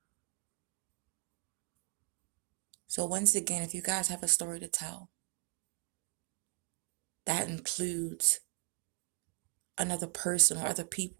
So once again, if you guys have a story to tell, that includes another person or other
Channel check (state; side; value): quieter; left; 35.6 dB